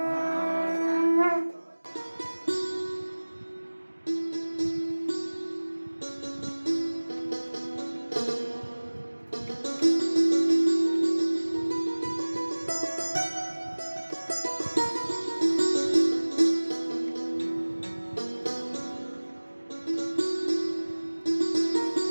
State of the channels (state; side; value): inverted; both; correlation -1.00